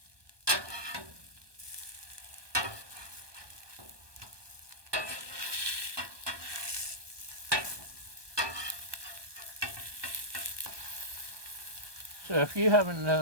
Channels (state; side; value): late; left; 1.2 ms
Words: So if you haven't